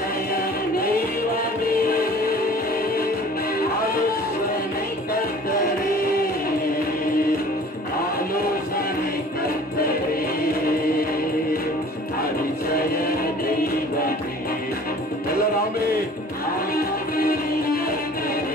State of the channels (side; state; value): both; normal; correlation 0.48